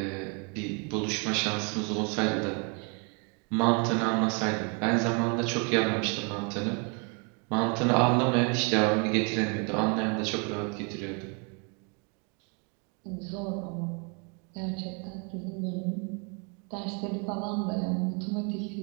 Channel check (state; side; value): quieter; left; 35.7 dB